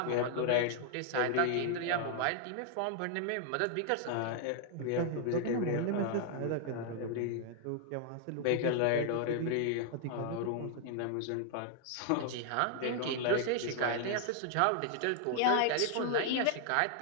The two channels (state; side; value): different; both; correlation 0.00